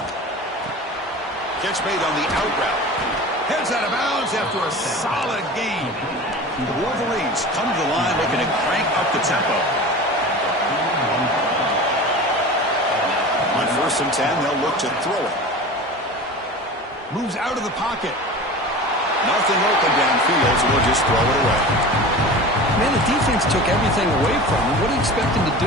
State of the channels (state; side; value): normal; both; correlation 0.34